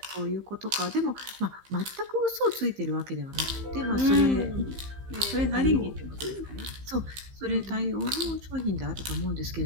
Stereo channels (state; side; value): late; left; 15 ms